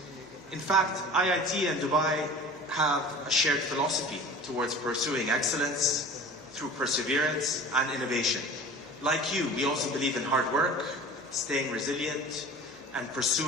In fact, IIT and Dubai have a shared philosophy towards pursuing excellence through perseverance and innovation. Like you, we also believe in hard work, staying resilient, and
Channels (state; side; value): normal; both; correlation 0.40